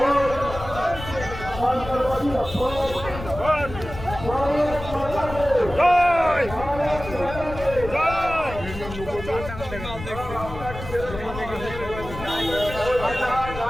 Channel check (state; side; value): noise; left; rumble, 11 dB below the sound